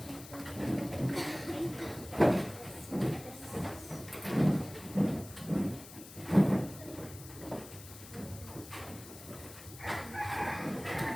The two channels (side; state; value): left; noise; hiss, 16 dB below the sound